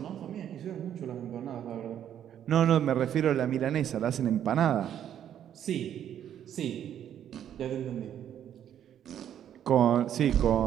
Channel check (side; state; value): left; quieter; 10.1 dB